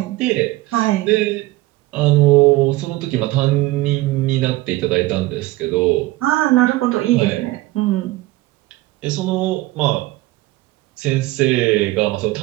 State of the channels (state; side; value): quieter; left; 18.6 dB